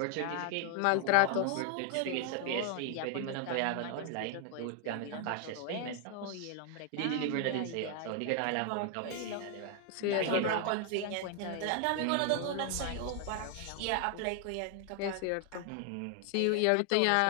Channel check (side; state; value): both; different; correlation 0.00